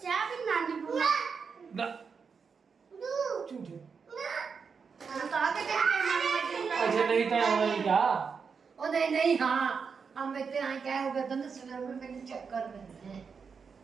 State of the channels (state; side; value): quieter; left; 5.7 dB